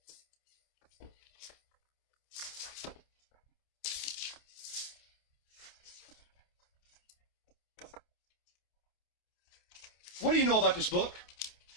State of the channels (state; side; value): late; right; 28 ms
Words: What do you know about this book?